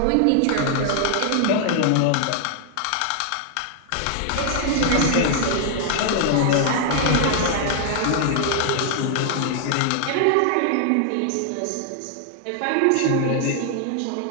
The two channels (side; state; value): both; different; correlation 0.00